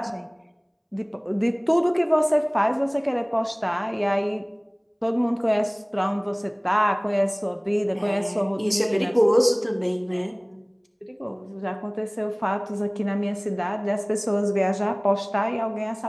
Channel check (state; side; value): identical; both; correlation 1.00